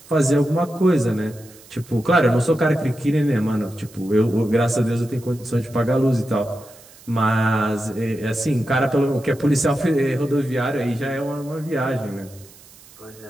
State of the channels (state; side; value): noise; right; hiss, 23 dB below the sound